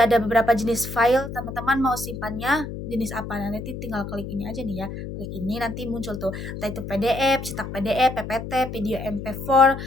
ada beberapa jenis file, teman-teman mau simpannya jenis apa. Nah, nanti tinggal klik ini aja nih ya, klik ini nanti muncul tuh, entah itu PDF, cetak PDF, PPT, video MP4,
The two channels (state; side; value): noise; left; hum, 8 dB below the sound